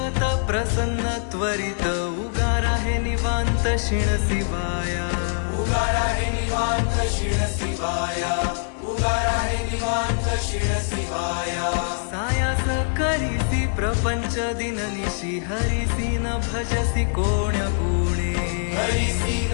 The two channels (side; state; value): right; silent; digital silence